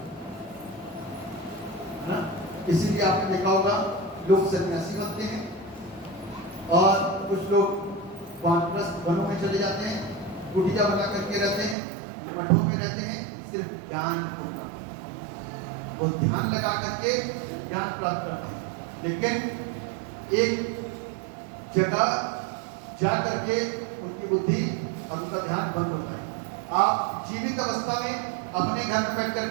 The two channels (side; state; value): left; drops out; at 11.8 s